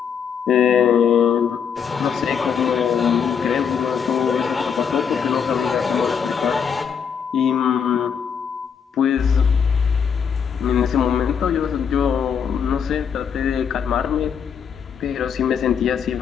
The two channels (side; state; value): right; quieter; 7.2 dB